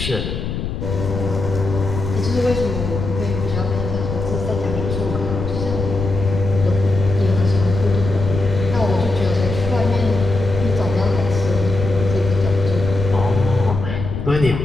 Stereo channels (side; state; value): left; noise; rumble, 5 dB below the sound